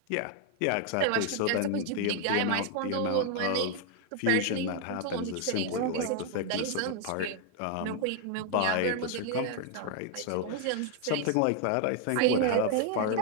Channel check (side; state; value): both; different; correlation 0.00